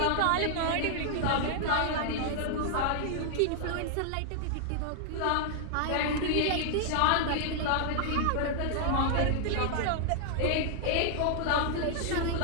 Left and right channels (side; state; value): both; different; correlation -0.01